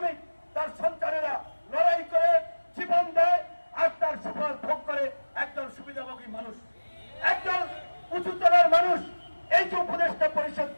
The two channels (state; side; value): inverted; both; correlation -1.00